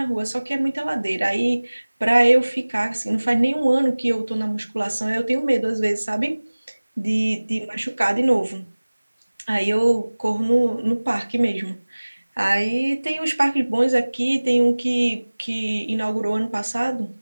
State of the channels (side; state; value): both; inverted; correlation -1.00